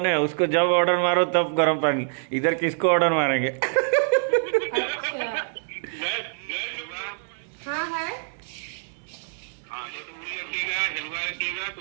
है, उसको जब ऑर्डर मारो तब गर्म पानी। इधर किसको ऑर्डर मारेंगे? हाँ है। हाँ, जो तो पूरी रखिएगा, हलवा रखिएगा, तो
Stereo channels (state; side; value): silent; left; digital silence